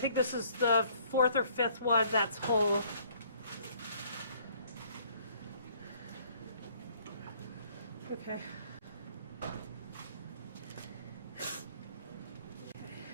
this is the 4th or 5th one that's whole. Okay.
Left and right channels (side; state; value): both; inverted; correlation -0.60